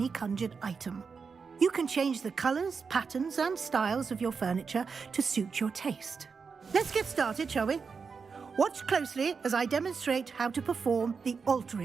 conjured item. You can change the colors, patterns, and styles of your furniture to suit your taste. Let's get started, shall we? Watch closely as I demonstrate how to perform the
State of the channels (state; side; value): quieter; left; 5.4 dB